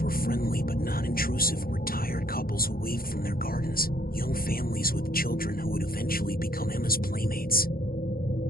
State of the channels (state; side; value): late; right; 0.43 ms